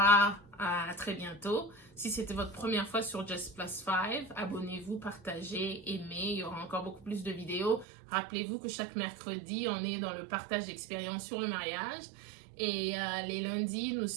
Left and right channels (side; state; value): left; drops out; at 7.9 s